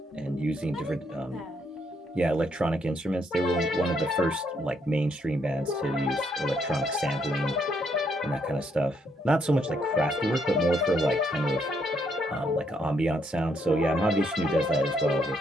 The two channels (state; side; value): normal; both; correlation 0.74